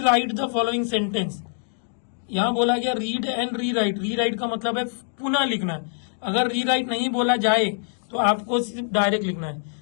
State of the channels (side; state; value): right; silent; digital silence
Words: right the following sentence, यहाँ बोला गया रीड एंड री राइट, री राइट का मतलब है पुनः लिखना है। अगर री राइट नहीं बोला जाए तो आपको सिर्फ डायरेक्ट लिखना है,